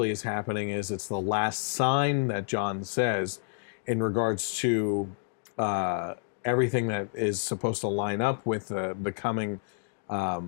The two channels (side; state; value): right; silent; digital silence